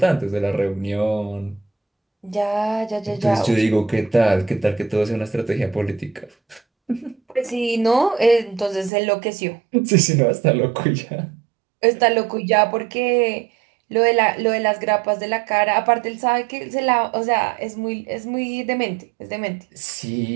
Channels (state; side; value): drops out; left; at 8.9 s